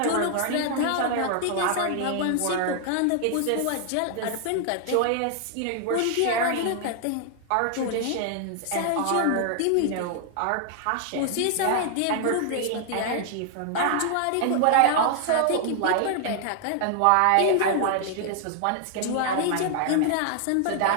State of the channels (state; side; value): different; both; correlation 0.00